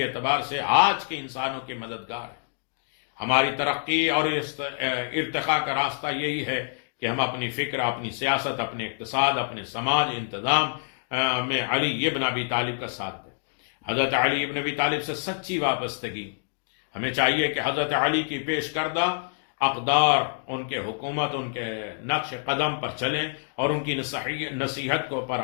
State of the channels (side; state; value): right; silent; digital silence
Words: اعتبار سے آج کے انسانوں کے مددگار ہے۔ ہماری ترقی اور ارتقاء کا راستہ یہی ہے کہ ہم اپنی فکر، اپنی سیاست، اپنے اقتصاد، اپنے سماج انتظام میں علی ابن ابی طالب کا ساتھ دیں۔ حضرت علی ابن ابی طالب سے سچی وابستگی، ہمیں چاہیے کہ حضرت علی کی پیش کردہ اقدار، ان کے حکومت، ان کے نقش قدم پر چلیں اور ان کی نصیحت کو پر